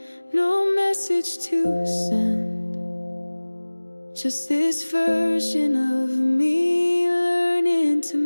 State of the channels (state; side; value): inverted; both; correlation -1.00